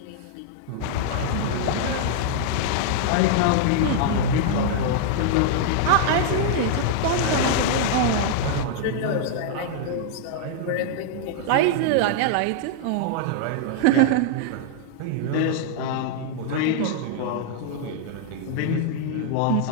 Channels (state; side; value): different; both; correlation -0.01